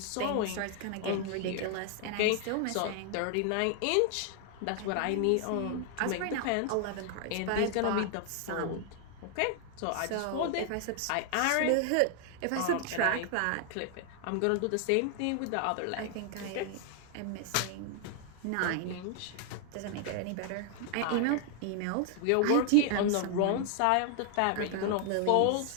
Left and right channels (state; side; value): different; both; correlation 0.00